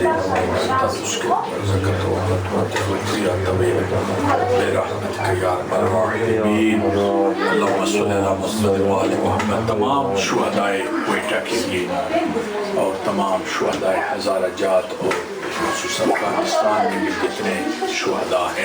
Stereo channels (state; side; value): identical; both; correlation 1.00